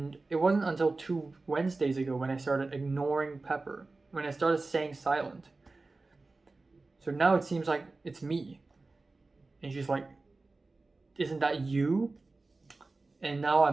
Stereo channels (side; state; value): left; quieter; 3.5 dB